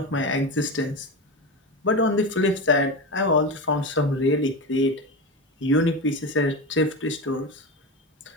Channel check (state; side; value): normal; both; correlation 0.21